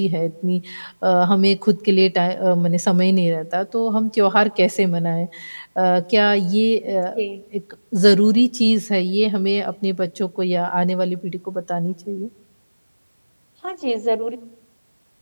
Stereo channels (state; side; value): inverted; both; correlation -1.00